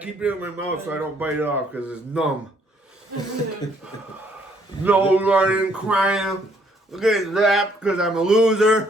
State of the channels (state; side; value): normal; both; correlation 0.66